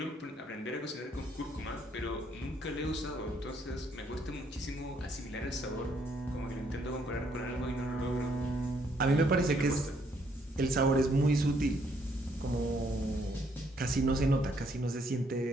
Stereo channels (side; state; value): both; normal; correlation 0.69